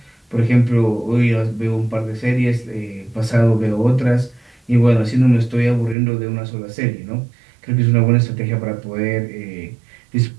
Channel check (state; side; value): drops out; left; at 6.0 s